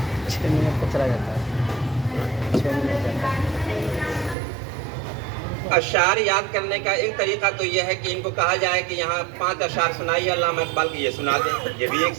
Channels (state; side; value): drops out; left; at 4.4 s